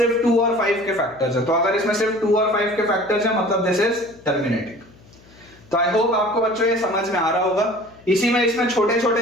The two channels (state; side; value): noise; left; hum, 26 dB below the sound